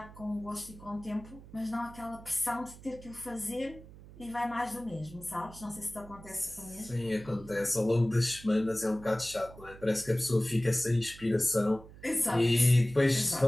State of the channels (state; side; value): noise; right; hum, 18 dB below the sound